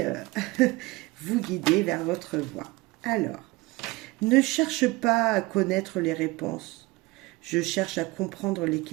vous guider vers votre voie. Alors, ne cherche pas à connaître les réponses. Je cherche à comprendre les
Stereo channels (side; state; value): left; quieter; 22.2 dB